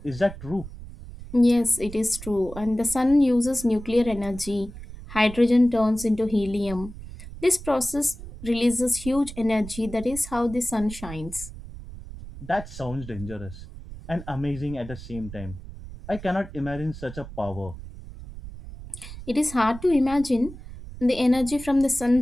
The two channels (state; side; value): noise; right; rumble, 13 dB below the sound